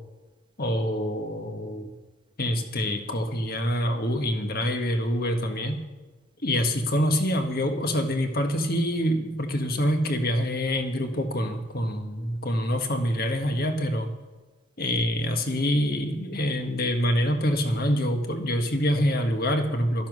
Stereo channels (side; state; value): both; normal; correlation 0.67